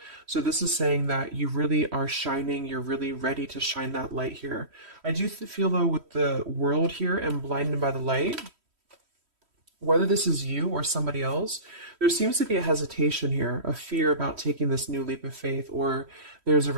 So this is saying that you really are shining, you're really ready to shine that light here. I do feel though with the world here and blinded by the light, whether this is you or somebody else, there seems to be a hesitation here, a fear about taking this new leap of faith, or there's a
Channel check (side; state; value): left; late; 3.1 ms